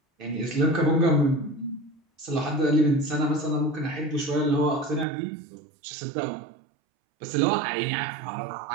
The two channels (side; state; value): left; drops out; at 5.1 s